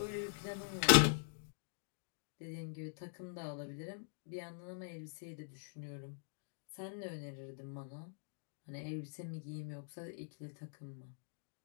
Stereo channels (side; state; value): right; silent; digital silence